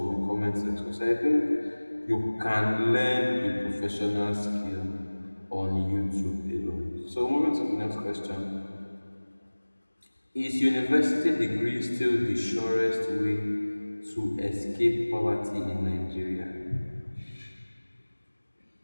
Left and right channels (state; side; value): inverted; both; correlation -1.00